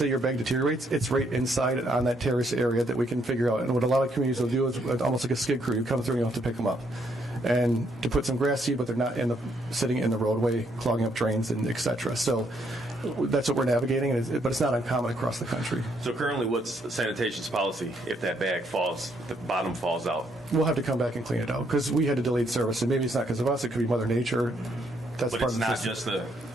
your bag deteriorates, it's right inside on that terrace area that we can figure out. And what a lot of communities will do is almost like a skid crew. You come through and you have to pick them up. And to put some grass seed, but they're not sitting in the roadway, clogging up drains, and et cetera. So that's what we're navigating, but it's not uncommon across the country. So currently, what's sanitation's policy if that bag falls, the bottom falls out? We'll have to come back and clean it out because we had a delayed service. And maybe it's not because of us. It could be Mother Nature. That's but part it's of the not system. just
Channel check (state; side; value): normal; both; correlation 0.72